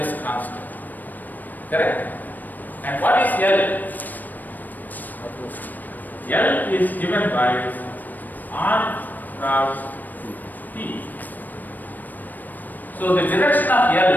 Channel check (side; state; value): right; late; 0.087 ms